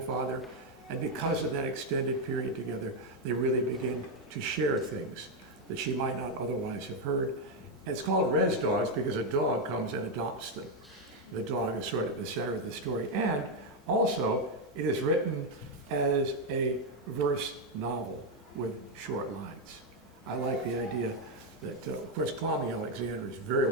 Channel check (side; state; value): both; normal; correlation 0.04